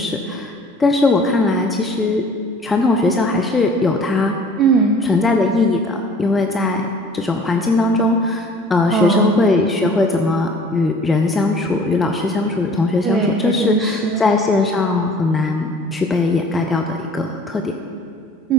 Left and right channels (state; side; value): normal; both; correlation 0.50